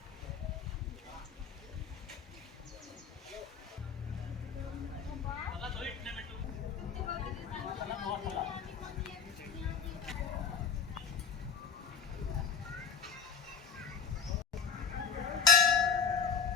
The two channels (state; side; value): quieter; right; 6.4 dB